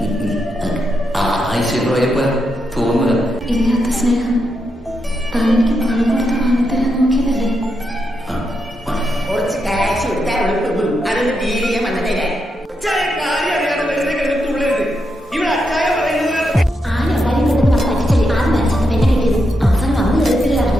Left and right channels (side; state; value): both; normal; correlation 0.83